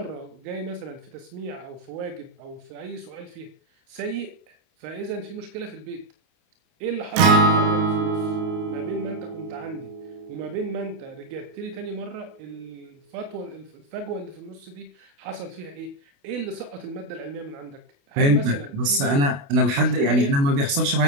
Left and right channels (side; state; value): left; late; 28 ms